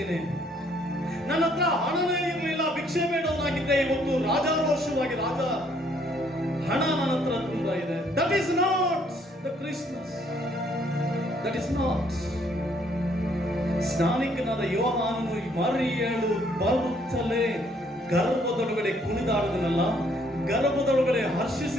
ನನ್ನ ಹತ್ರ ಹಣನೇ ಇರಲಿಲ್ಲ, ಭಿಕ್ಷೆ ಬೇಡವನಾಗಿದ್ದೆ, ಇವತ್ತು ರಾಜಾರೋಷವಾಗಿ ಹಣ ನನ್ನ ಹತ್ರ ತುಂಬಾ ಇದೆ. That is not the Christmas. That is not. ಸ್ನಾನಿಕನಾದ ಯೋಹಾನನು ಮರಿಯಳು ಬರುತ್ತಲೇ ಗರ್ಭದೊಳಗಡೆ ಕುಣಿದಾಡುದನಲ್ಲ, ಗರ್ಭದೊಳಗಡೆ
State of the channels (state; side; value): normal; both; correlation 0.66